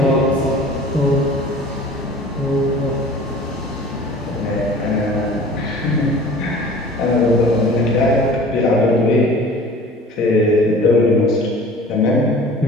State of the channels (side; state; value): both; normal; correlation 0.44